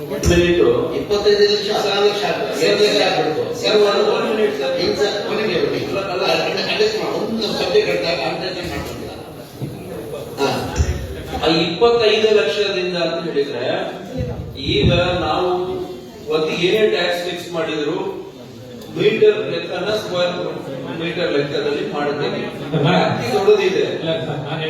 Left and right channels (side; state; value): both; identical; correlation 1.00